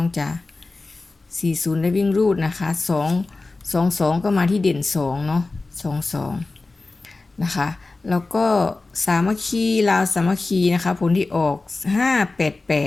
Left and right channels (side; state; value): right; quieter; 3.4 dB